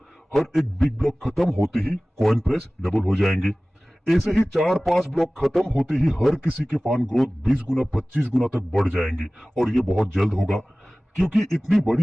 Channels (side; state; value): both; normal; correlation 0.98